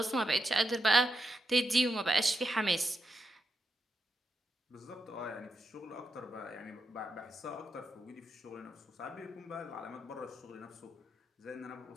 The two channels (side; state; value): both; normal; correlation 0.84